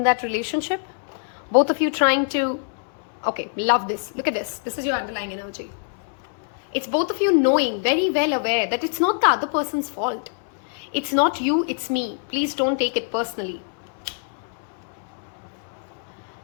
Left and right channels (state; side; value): silent; right; 62 dB below the other